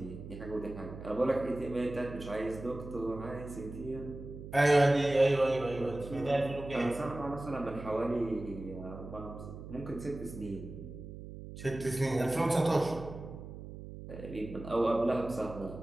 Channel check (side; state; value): right; noise; hum, 12 dB below the sound